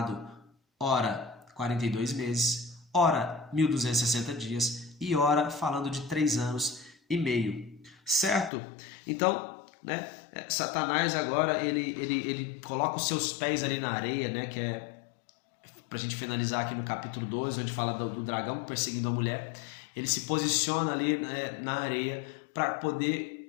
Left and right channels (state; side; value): drops out; right; at 8.5 s